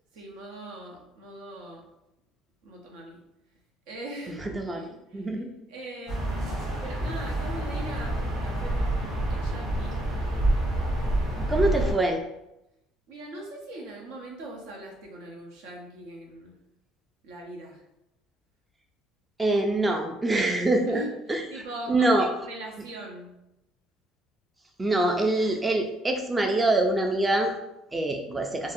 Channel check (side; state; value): both; normal; correlation 0.75